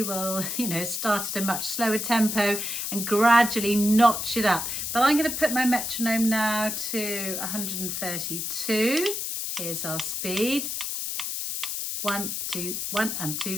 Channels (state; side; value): noise; left; hiss, 3 dB below the sound